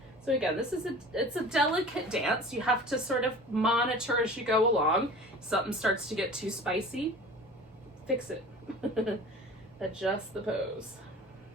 So again, it's a delicate dance. You have to sort of monitor as you go along. If something starts to get too spicy, fix it. Adjust the pose.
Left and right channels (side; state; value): both; normal; correlation 0.41